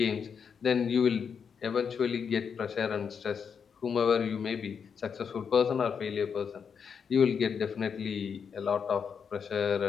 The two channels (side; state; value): right; quieter; 6.7 dB